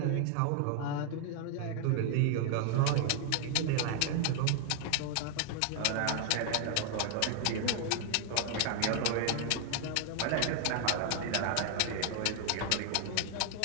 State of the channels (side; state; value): both; different; correlation 0.00